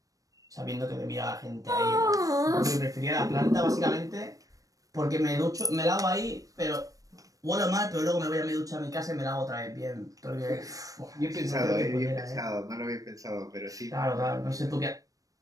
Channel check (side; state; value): left; late; 0.16 ms